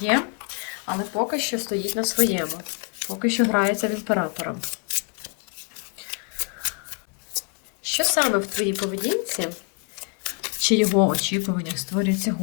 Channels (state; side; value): quieter; right; 36.9 dB